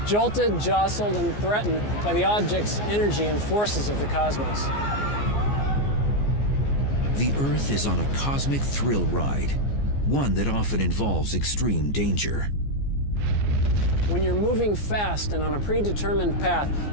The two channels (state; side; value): late; right; 14 ms